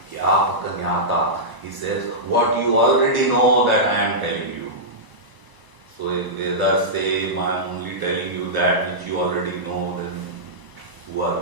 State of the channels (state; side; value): late; left; 1.0 ms